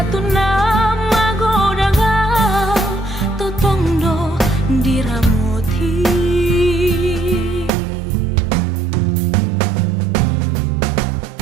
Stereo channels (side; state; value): left; drops out; at 7.7 s